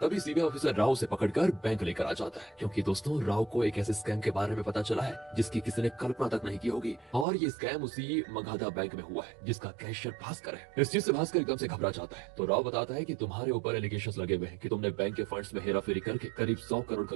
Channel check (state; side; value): drops out; left; at 7.2 s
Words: तभी सीबीआई ऑफिसर राव से पकड़कर बैंक लेकर आ जाता है। क्योंकि दोस्तों राव को एक ऐसे स्कैम के बारे में पता चला है जिसकी किसी ने कल्पना तक नहीं की होगी, और ये स्कैम उसी मगधा बैंक में हुआ है जिसका कैशियर भास्कर है। इस चीज से भास्कर एकदम से घबरा जाता है। तो राव बताता है कि तुम्हारे ऊपर एलिगेशंस लगे हुए हैं कि तुमने बैंक के फंड्स में हेराफेरी करके करीब 100 करोड़